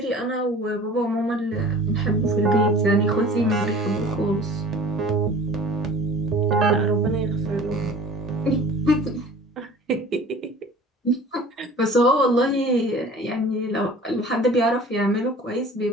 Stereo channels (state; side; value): normal; both; correlation 0.45